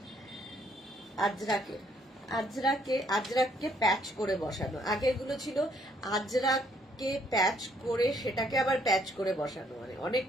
আজরাককে প্যাচ করে বসানো। আগেরগুলো ছিল আজরাককে প্যাচ করে সেটাকে আবার প্যাচ করে বসানো, মানে অনেক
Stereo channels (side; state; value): both; normal; correlation 0.67